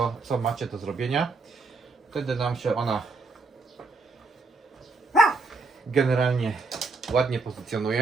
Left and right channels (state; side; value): quieter; left; 3.8 dB